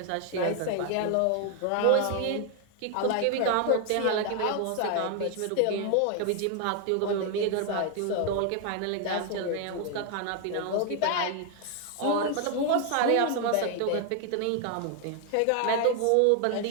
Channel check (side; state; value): both; different; correlation 0.00